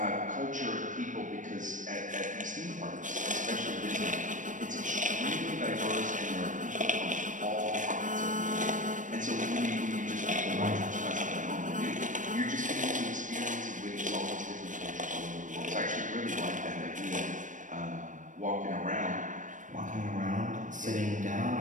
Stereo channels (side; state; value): left; late; 0.37 ms